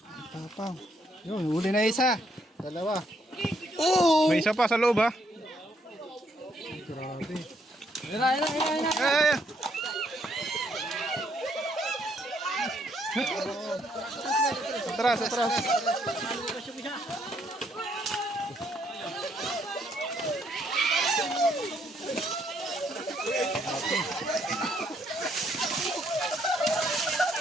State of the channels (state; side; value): normal; both; correlation 0.71